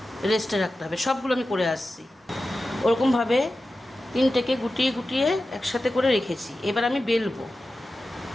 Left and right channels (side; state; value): both; normal; correlation 0.93